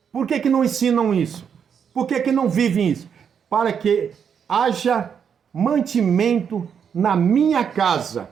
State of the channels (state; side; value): quieter; left; 7.4 dB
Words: Por que não ensinam isso? Por que não vivem isso? Para que haja mantimento na minha casa.